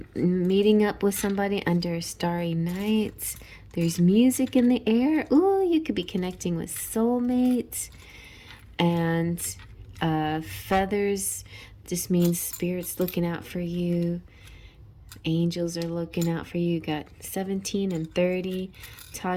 Meeting up with somebody under a starry night. There's music in the air. Ooh, you could be connecting with soulmates. And feathers just means spirits looking out for you. Angels are looking out for you. You got 17 and 30.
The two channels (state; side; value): identical; both; correlation 1.00